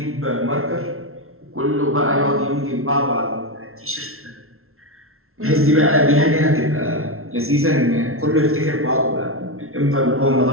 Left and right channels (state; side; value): late; left; 0.62 ms